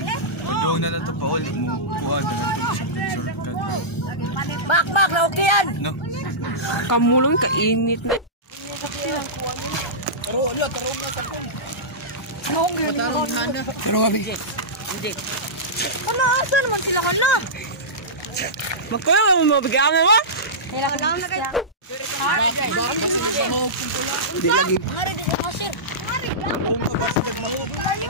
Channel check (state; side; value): normal; both; correlation -0.17